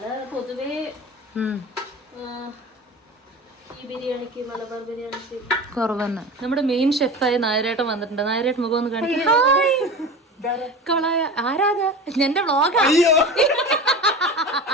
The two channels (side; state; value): both; normal; correlation 0.32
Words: പൊതുവേ ഈ ബിരിയാണിക്ക്, മലബാർ ബിരിയാണിക്ക് കുറവ് തന്നെ. നമ്മുടെ മെയിൻ ഷെഫായ നായരേട്ടൻ വന്നിട്ടുണ്ട്. നായരേട്ടൻ മുഖം ഒന്ന് കാണിക്കാം. ആരാധ എന്റെ വ്ളോഗാ.